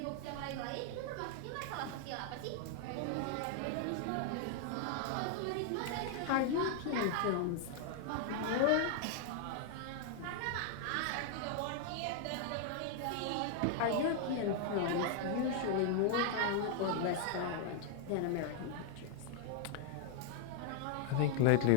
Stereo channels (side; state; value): both; different; correlation 0.00